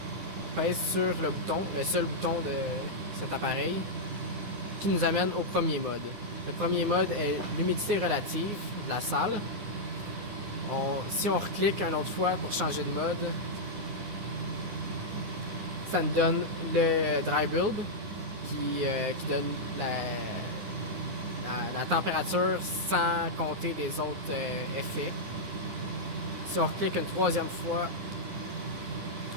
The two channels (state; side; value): late; left; 9.7 ms